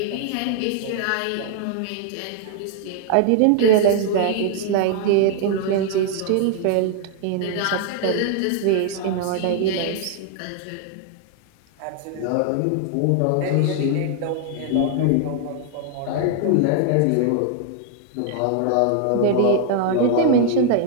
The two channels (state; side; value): different; both; correlation 0.00